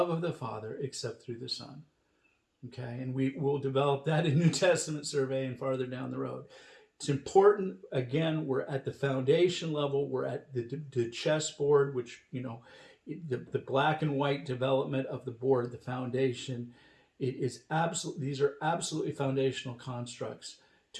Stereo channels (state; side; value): identical; both; correlation 1.00